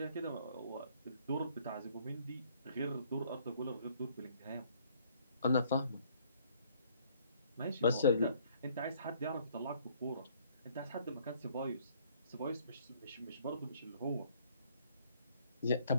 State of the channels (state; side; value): inverted; both; correlation -0.62